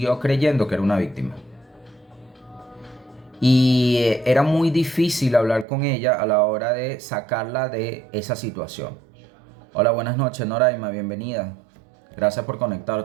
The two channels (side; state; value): left; drops out; at 5.7 s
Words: creyendo que era una víctima. Y era muy difícil hablar con ella a la hora de sacarla de esa situación. Hola, buenas noches, Noraima, bienvenida. Gracias por